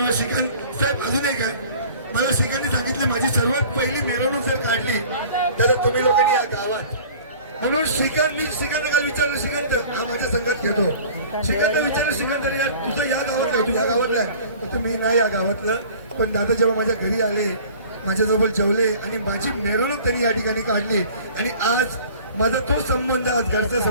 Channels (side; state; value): both; inverted; correlation -0.46